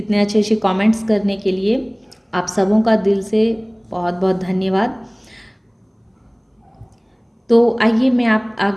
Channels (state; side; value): identical; both; correlation 1.00